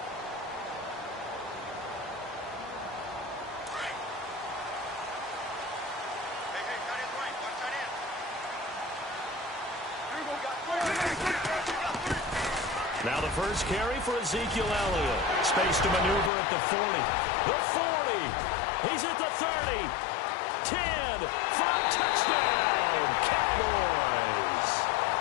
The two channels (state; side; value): drops out; right; at 16.3 s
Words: Now the first carry for Ezekiel Elliott. Space to maneuver at the 40. The 40. He's at the 30. 10. 5. Touchdown. Cowboys.